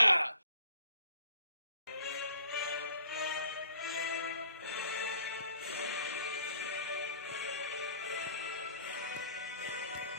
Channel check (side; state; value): both; inverted; correlation -0.56